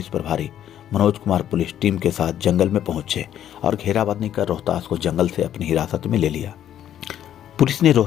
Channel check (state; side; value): quieter; right; 10.8 dB